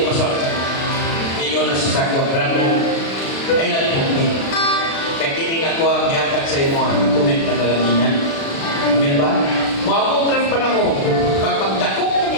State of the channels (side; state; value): right; late; 36 ms